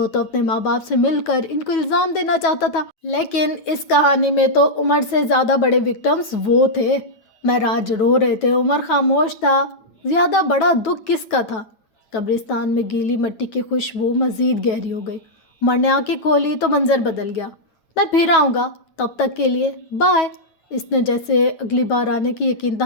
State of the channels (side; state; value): right; late; 9.2 ms